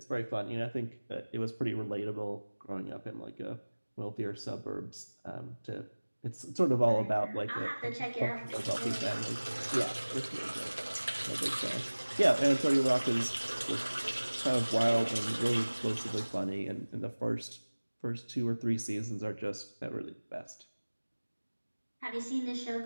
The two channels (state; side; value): inverted; both; correlation -1.00